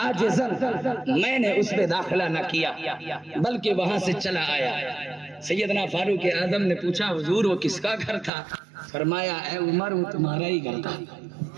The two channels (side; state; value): left; drops out; at 8.3 s